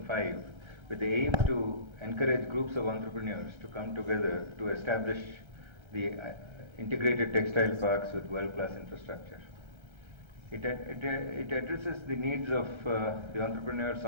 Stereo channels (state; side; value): late; left; 1.3 ms